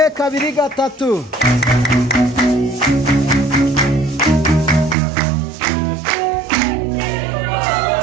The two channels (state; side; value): drops out; left; at 5.0 s